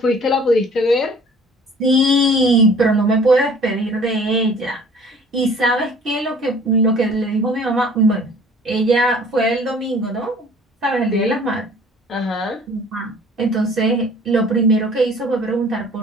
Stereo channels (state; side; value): normal; both; correlation 0.51